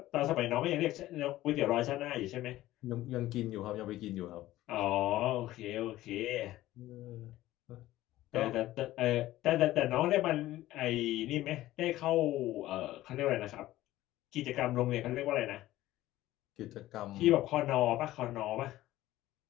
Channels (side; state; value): right; quieter; 15.6 dB